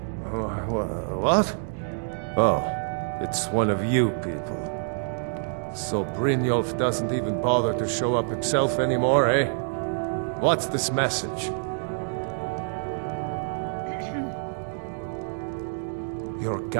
Oh, it's one of you people. So Brynjolf doesn't even bother to show up himself anymore, eh? What's this message? You're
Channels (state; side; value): silent; left; digital silence